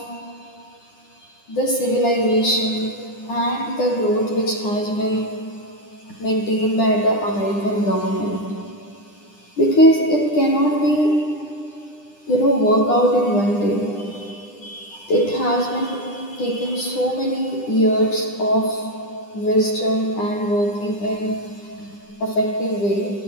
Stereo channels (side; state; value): right; late; 9.9 ms